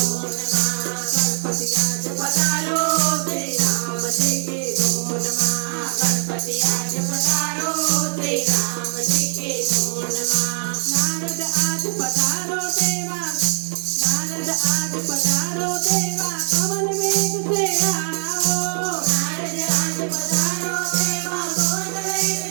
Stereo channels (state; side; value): silent; left; digital silence